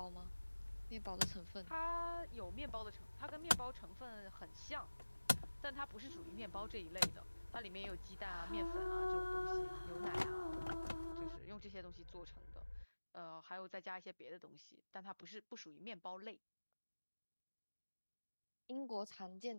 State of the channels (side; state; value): both; inverted; correlation -1.00